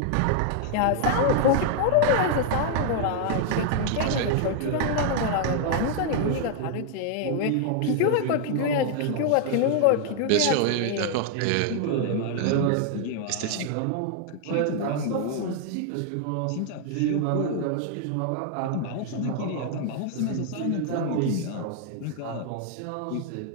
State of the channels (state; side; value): different; both; correlation 0.00